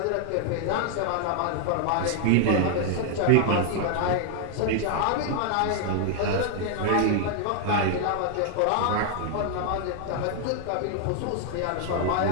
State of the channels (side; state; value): both; different; correlation 0.00